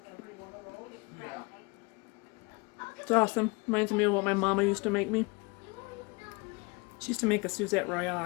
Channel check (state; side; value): quieter; right; 27.6 dB